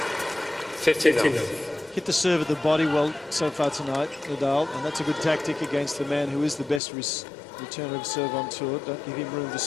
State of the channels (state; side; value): drops out; right; at 6.8 s